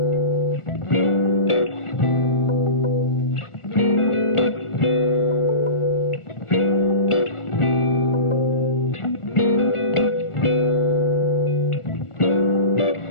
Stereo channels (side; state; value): right; late; 1.4 ms